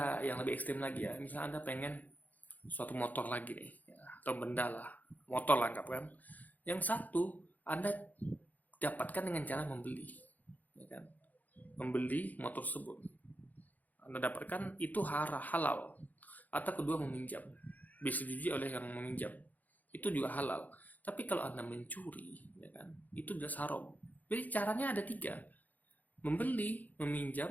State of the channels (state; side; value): late; right; 0.081 ms